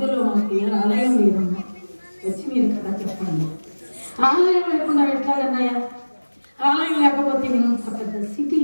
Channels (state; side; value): inverted; both; correlation -1.00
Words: మాకు ఏ ఆలయం లేదమ్మా, వచ్చి మీరు కదా చెప్పండి. ఆలయం లేకుండా ఎట్లాగన్నాయా? ఆలయం లేకపోతే ఇంత పెద్ద